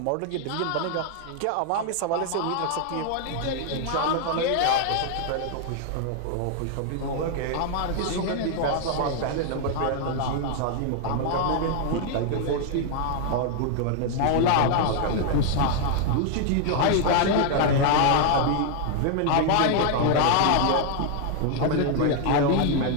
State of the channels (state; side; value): different; both; correlation 0.00